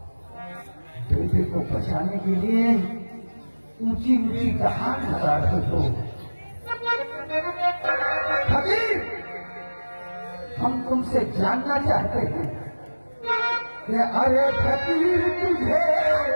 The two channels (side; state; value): both; inverted; correlation -1.00